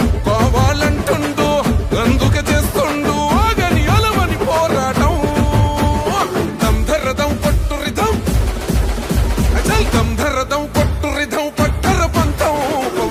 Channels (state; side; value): identical; both; correlation 1.00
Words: కావాలంటుండు, అందుకే చేస్తుండు ఆగని అలవని పోరాటం. దంధరదం కొట్టురిదం అచల్ దంధరదం కొట్టురిదం పట్టర పంతం